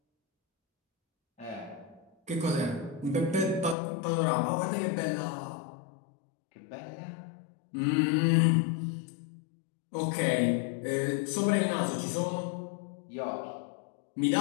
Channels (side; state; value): right; drops out; at 3.8 s